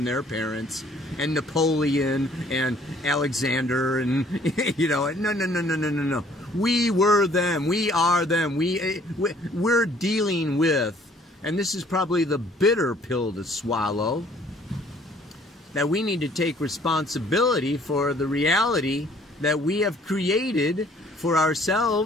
their parents and Napoleon and Alexander and, you know, no. We were them. We are them. We're dealing with, and this is probably the bitter pill to swallow, that we need to take responsibility for the reality that we have created for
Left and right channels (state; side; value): normal; both; correlation 0.58